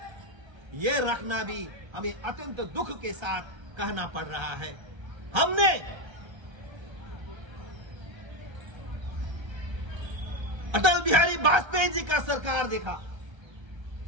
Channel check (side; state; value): left; late; 1.3 ms